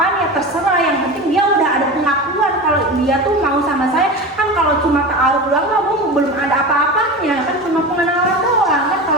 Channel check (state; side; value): normal; both; correlation 0.27